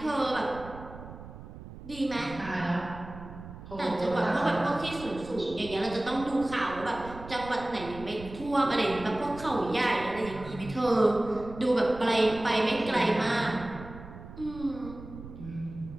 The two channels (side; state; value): right; noise; rumble, 14 dB below the sound